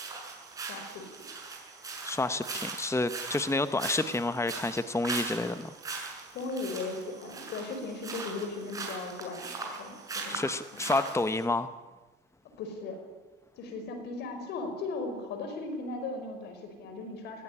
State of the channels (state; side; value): normal; both; correlation 0.45